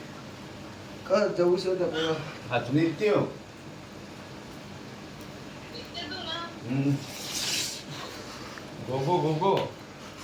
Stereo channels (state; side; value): identical; both; correlation 1.00